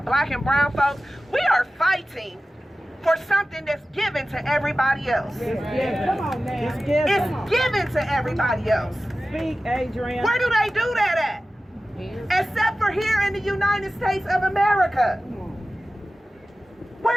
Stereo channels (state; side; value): normal; both; correlation 0.95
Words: black and brown folks. We are fighting for something that's given to everybody else. Yeah. Come on now. It's given to everybody else. Speak, Adrienne. Where do they do that at? Except for here in the United States of America.